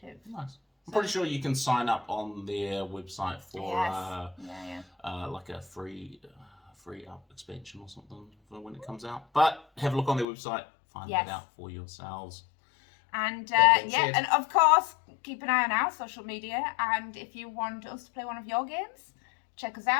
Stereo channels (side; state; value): right; drops out; at 10.2 s